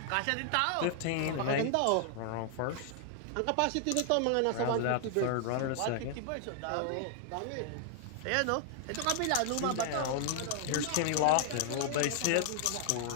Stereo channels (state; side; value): different; both; correlation 0.00